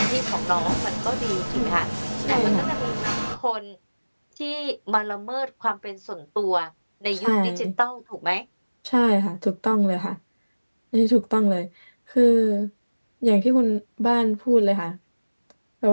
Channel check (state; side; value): inverted; both; correlation -1.00